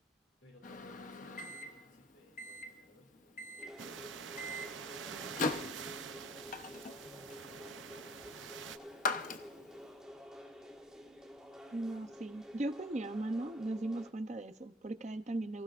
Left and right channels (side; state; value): both; normal; correlation 0.52